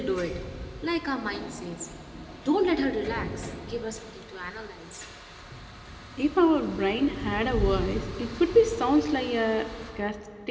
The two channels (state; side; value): identical; both; correlation 1.00